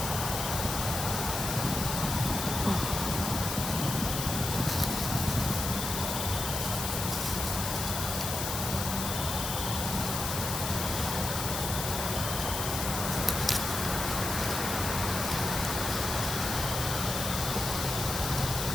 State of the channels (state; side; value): noise; left; hiss, 3 dB below the sound